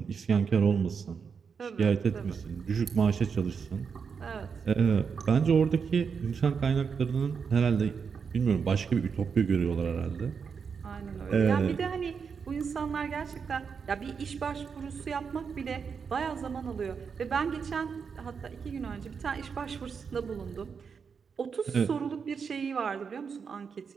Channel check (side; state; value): left; quieter; 6.1 dB